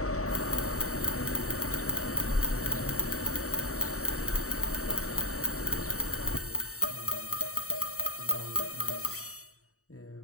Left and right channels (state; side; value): late; right; 0.65 ms